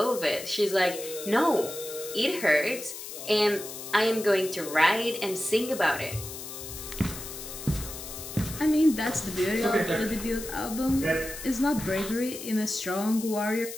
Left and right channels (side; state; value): left; noise; hiss, 10 dB below the sound